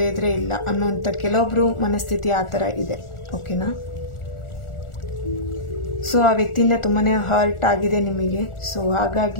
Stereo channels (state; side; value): late; right; 1.4 ms